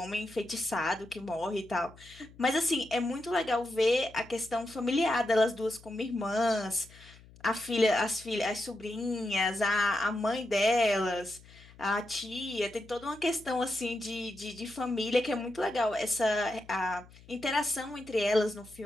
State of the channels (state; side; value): noise; left; hum, 23 dB below the sound